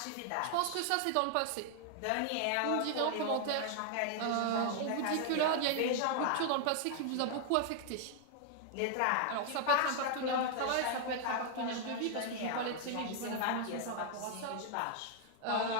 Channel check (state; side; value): different; both; correlation 0.00